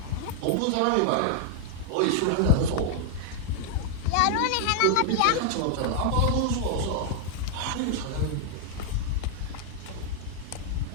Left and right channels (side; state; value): both; different; correlation -0.01